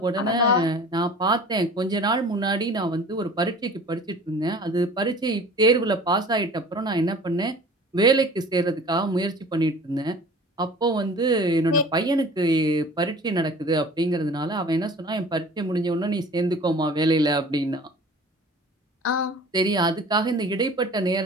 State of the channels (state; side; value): normal; both; correlation 0.44